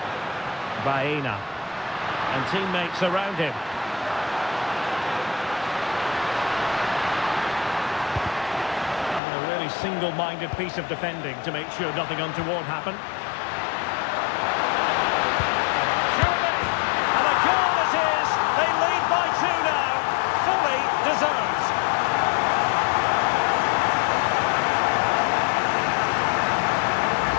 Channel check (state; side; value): drops out; right; at 9.2 s